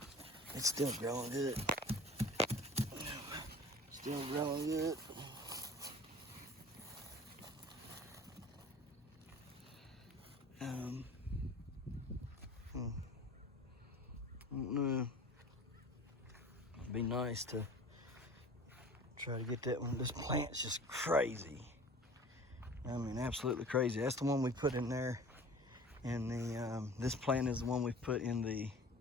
It's still growing good. Still growing good. I don't know. It'd be nice to try to get that one. This plant's just crazy. I mean, absolutely crazy. That's the one we put in there. And this plant is the one we put in the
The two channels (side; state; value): both; normal; correlation 0.42